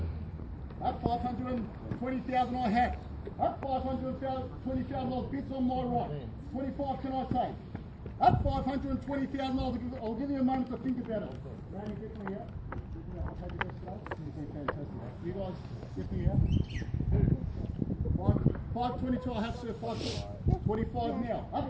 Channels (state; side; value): identical; both; correlation 1.00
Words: At 520,000 I have. At $520,000 bids on my right. 25 can I say? At $520,000 I'll give you a moment to think about it. Randy, get me out. I'll take your best today. You guys, get me out. 522 I have, sir. 525 now.